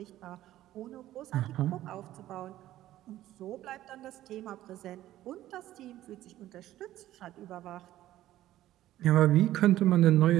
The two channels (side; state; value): left; quieter; 14.1 dB